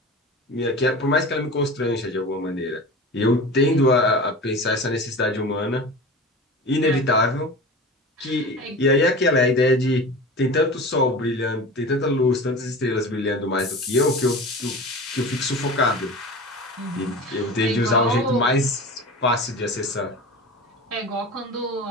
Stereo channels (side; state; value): both; normal; correlation 0.33